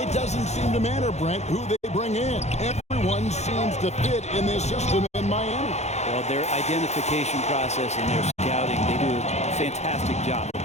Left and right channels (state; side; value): late; right; 0.32 ms